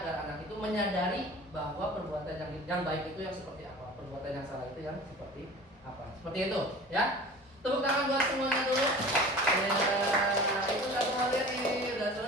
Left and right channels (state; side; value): normal; both; correlation 0.40